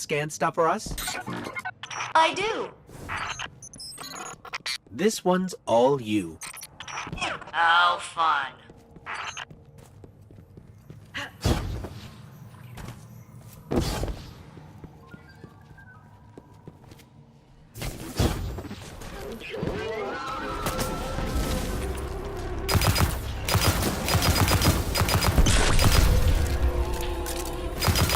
stuff for us? I do. This one's all you. How fun.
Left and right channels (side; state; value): both; identical; correlation 1.00